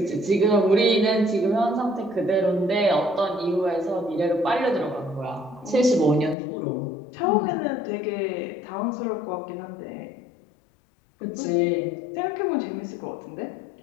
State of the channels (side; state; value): right; drops out; at 6.4 s